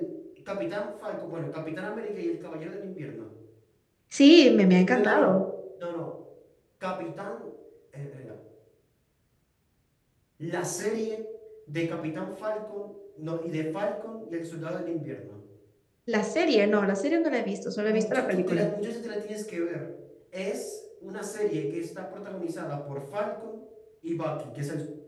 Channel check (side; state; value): both; identical; correlation 1.00